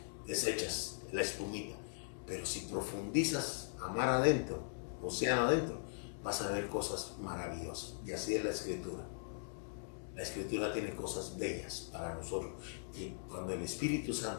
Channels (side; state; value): right; silent; digital silence